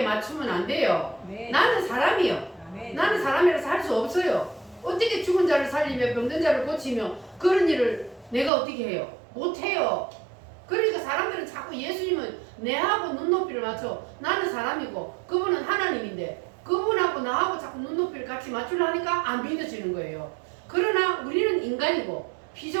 맞추면 안 돼요. 아멘. 나는 사람이요. 아멘. 나는 사람이라서 할 수 없어요. 어떻게 죽은 자를 살리며 병든 자를 고치며 그런 일을 내가 어떻게 해요? 못해요. 그러니까 사람들은 자꾸 예수님은 내하고 눈높이를 맞춰. 나는 사람이고 그분은 하나님인데 그분하고 나하고 자꾸 눈높이를 같이 맞추려니까 안 믿어지는 거예요. 그러나 우리는 인간이고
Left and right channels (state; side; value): drops out; left; at 8.5 s